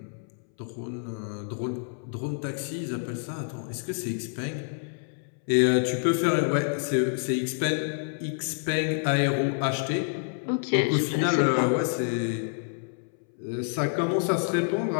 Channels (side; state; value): right; silent; 59 dB below the other